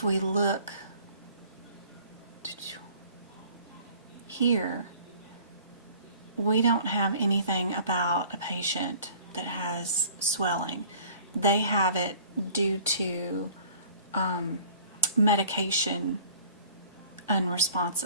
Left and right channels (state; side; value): inverted; both; correlation -0.50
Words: we look here, we don't have anything about a patient that has swelling. They have it due to medication